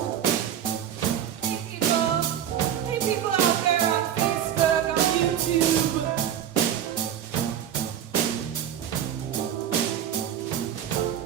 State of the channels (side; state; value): left; quieter; 10.0 dB